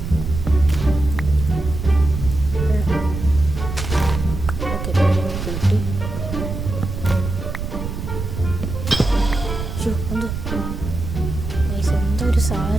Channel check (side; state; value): right; noise; rumble, 6 dB below the sound